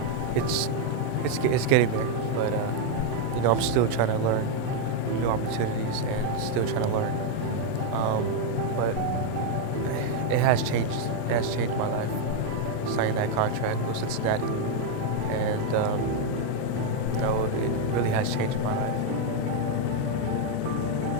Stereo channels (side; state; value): both; different; correlation 0.01